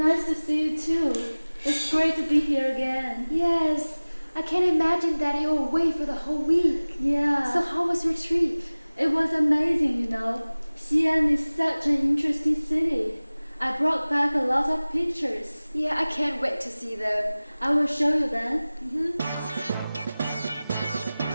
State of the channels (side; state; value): both; inverted; correlation -0.99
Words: to see you too. It's great to be here again. Yes, I can imagine that you were away for the whole week. Yeah. So how was your trip? It was amazing, you know. Xi'an is such an interesting city. I brought back a lot of pictures. Yeah, I can't wait to see them. I will show you then.